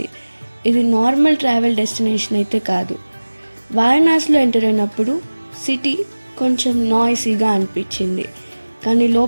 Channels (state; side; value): inverted; both; correlation -1.00